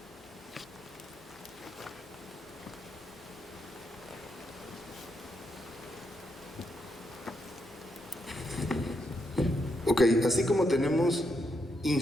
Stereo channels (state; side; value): normal; both; correlation 0.80